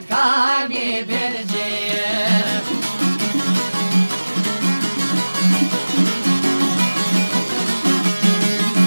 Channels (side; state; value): both; inverted; correlation -1.00